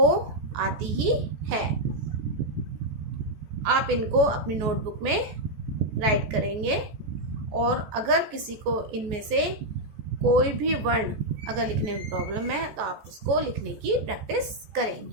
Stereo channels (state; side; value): late; left; 14 ms